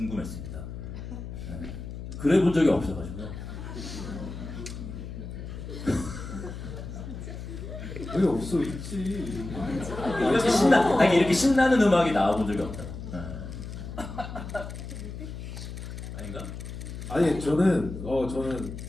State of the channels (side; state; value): left; noise; hum, 9 dB below the sound